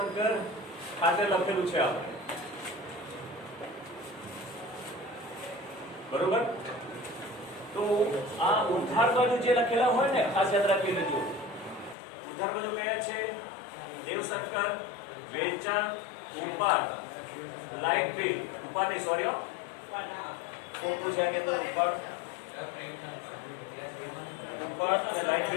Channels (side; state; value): right; drops out; at 12.0 s